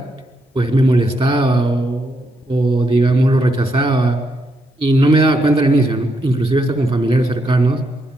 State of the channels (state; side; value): normal; both; correlation 0.79